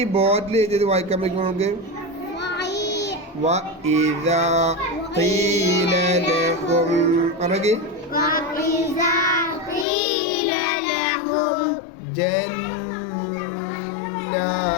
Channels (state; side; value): drops out; right; at 9.9 s